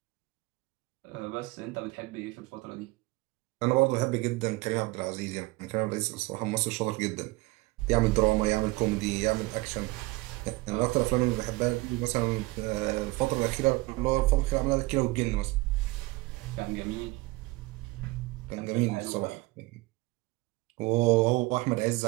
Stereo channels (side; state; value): left; quieter; 22.0 dB